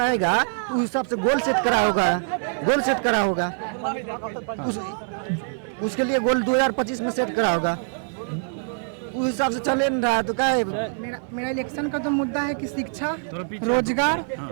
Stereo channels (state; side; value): silent; left; digital silence